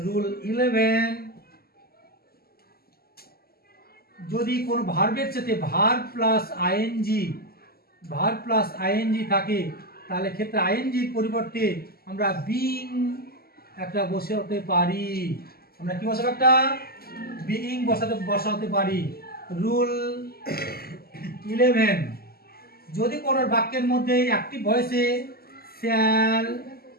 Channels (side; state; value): right; late; 0.45 ms